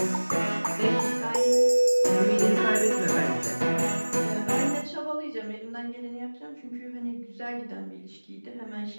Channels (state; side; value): inverted; both; correlation -1.00